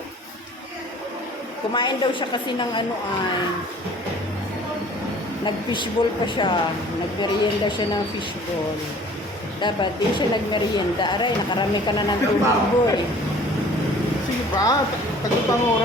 Kumain daw siya kasi ng nag-fishball pa siya. Nagmerienda siya ng fishball. Dapat din siya nagmerienda. Aray, nakarami ka na ng tubig, boy. Sige ba? Tagupang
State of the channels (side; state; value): both; normal; correlation 0.50